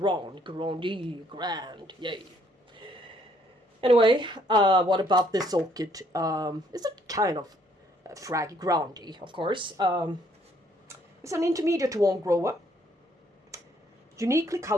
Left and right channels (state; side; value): normal; both; correlation 0.66